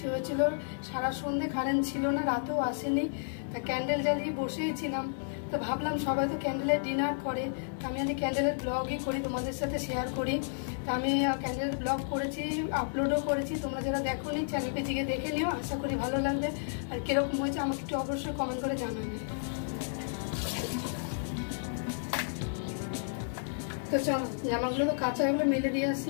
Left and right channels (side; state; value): right; silent; digital silence